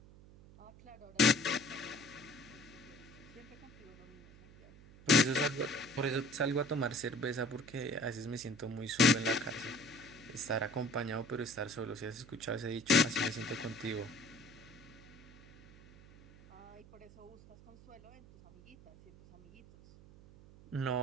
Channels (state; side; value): noise; right; hum, 21 dB below the sound